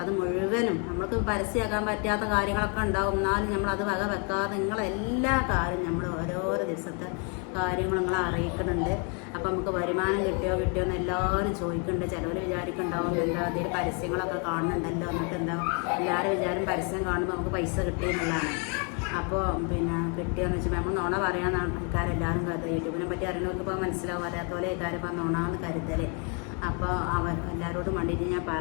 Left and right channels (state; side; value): quieter; right; 36.5 dB